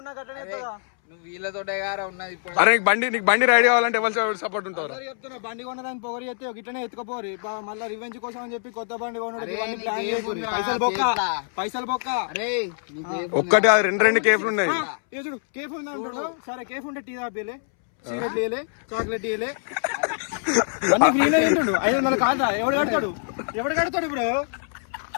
నాకు అట్లనే నువ్వు వీళ్ళతోటే గారా ఉన్నది ఇప్పుడు. అరే నీకు బండి రైడ్ కావాలంటే ఎవరు సపోర్ట్ ఉంటారు? చెప్తున్నా బండి కొనడానికి పొగరు చేస్తే ఇట్లనే ఎత్తుకోపోరు మళ్ళీ రివెంజ్ కోసం అని చెప్పి కొత్త బండి కొనడం అరే, ఇవన్నీ నీకు ప్లాన్ ఏం చేయకూరి. ఉందిరా? పైసలు బొక్క అరే నీకు ఒక్కటి అది రెండు కేఫ్లు ఉన్నాయి. ఏ చూడు కేఫ్ ఉంది అంటాడు. సరే కేఫ్ ఉంటే టీ తాపిలే, సిగరెట్ ఇయలే, చాక్లెట్ ఇయలే, అన్ని ఫ్రీలో తింటుండు. 500 కాదా? ఎవడు కడతాడు ఇప్పుడు?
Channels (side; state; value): right; silent; 62 dB below the other